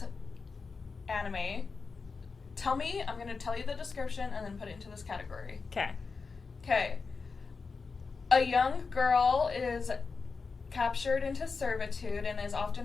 anime, tell me, I'm going to tell you the description and then put it into this category. Okay. Okay. A young girl is captured into servitude and is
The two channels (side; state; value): right; quieter; 4.7 dB